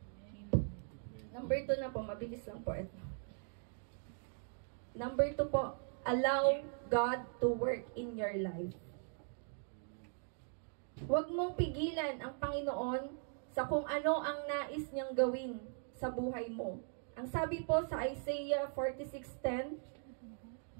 Number 2 na po, mabilis lang po ito. Number 2 po, allow God to work in your life. Huwag mong pigilan ang Panginoon sa kung ano ang nais niyang gawin sa buhay mo. Ang sabi po sa Isaiah 46:10,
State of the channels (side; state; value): left; silent; 51 dB below the other